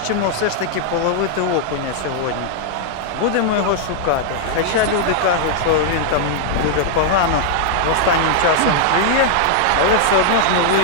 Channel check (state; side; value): different; both; correlation 0.00